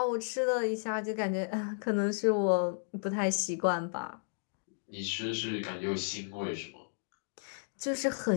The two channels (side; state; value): right; silent; digital silence